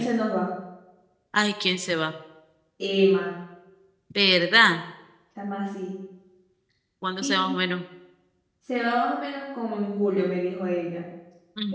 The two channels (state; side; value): identical; both; correlation 1.00